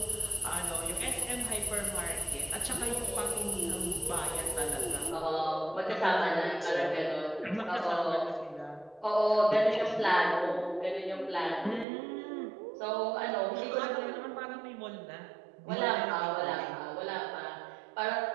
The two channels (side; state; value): left; drops out; at 11.9 s